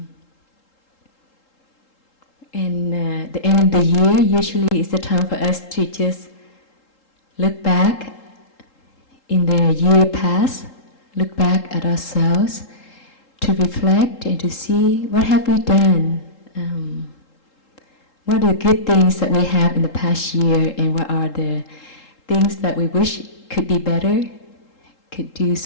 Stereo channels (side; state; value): right; late; 3.8 ms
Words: And the end of the year usually is the time for us to just look back in the year past, look back at ourselves, to reflect and to see what have we done, what are the good things that we have in the past year, and what are the things that we wish could be better, could do